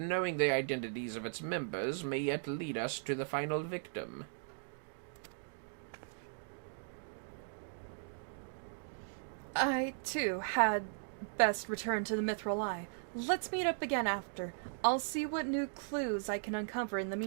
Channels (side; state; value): left; silent; digital silence